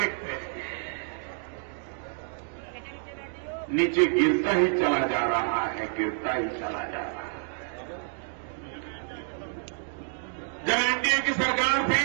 नीचे गिरता ही चला जा रहा है, गिरता ही चला जा रहा है। जब एनडीए की सरकार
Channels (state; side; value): silent; left; 59 dB below the other